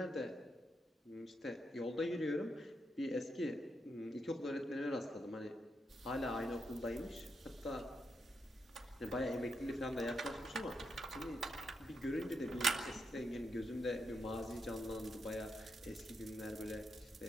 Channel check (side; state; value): both; normal; correlation 0.82